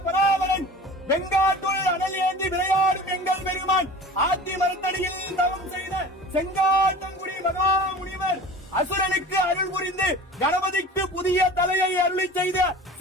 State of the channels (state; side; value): normal; both; correlation 0.39